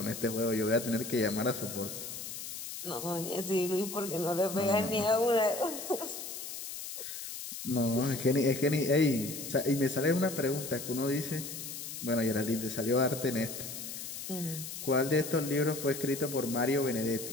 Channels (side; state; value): left; noise; hiss, 8 dB below the sound